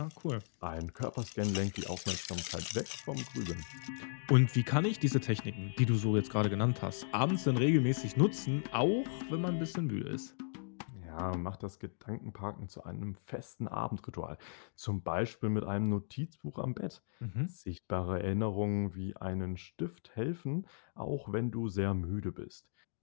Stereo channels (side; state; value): right; silent; digital silence